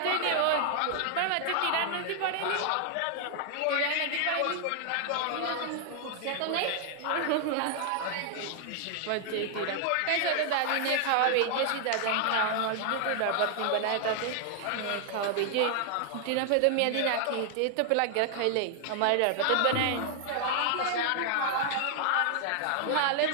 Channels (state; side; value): different; both; correlation 0.00